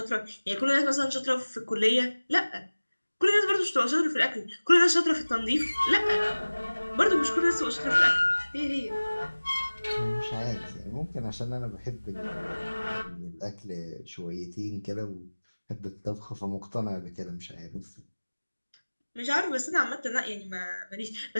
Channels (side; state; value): both; inverted; correlation -1.00